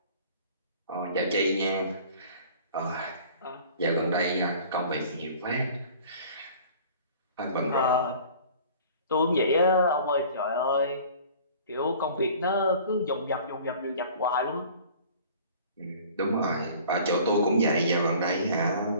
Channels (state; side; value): inverted; both; correlation -0.47